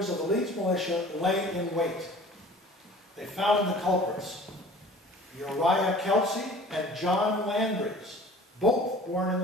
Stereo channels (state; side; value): normal; both; correlation 0.46